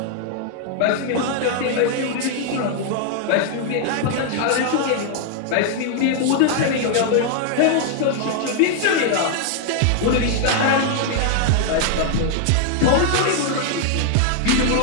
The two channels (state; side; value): different; both; correlation 0.00